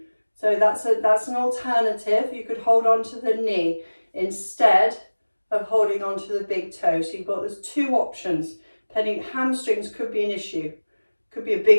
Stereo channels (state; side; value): inverted; both; correlation -1.00